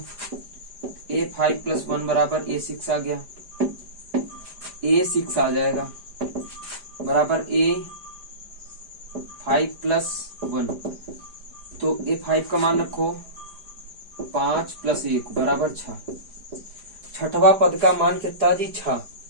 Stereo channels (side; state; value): left; late; 4.9 ms